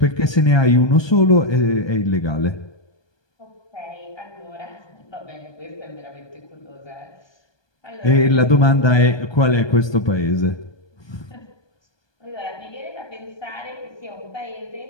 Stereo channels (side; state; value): right; late; 1.2 ms